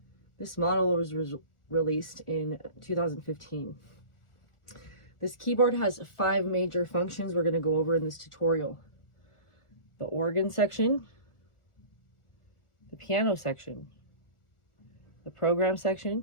This model was released in 2015. This keyboard has 5 major functions we're going to go over in this tutorial. The organ section, the piano section, the program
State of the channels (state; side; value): late; right; 1.4 ms